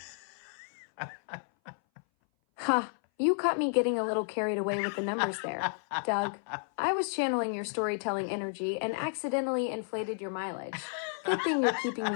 Ha! You caught me getting a little carried away with the numbers there, Doug. I was channeling your storytelling energy and accidentally inflated your mileage. Good thing you're keeping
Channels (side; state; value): right; silent; 57 dB below the other